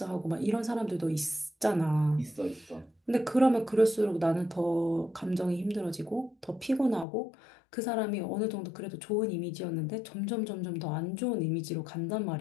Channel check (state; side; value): drops out; right; at 7.1 s